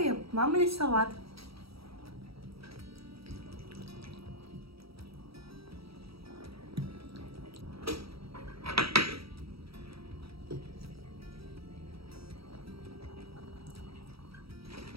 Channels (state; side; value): late; left; 0.76 ms